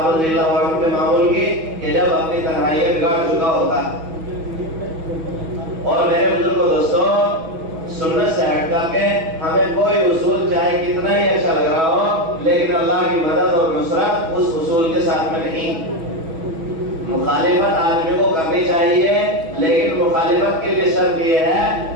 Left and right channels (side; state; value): left; late; 6.2 ms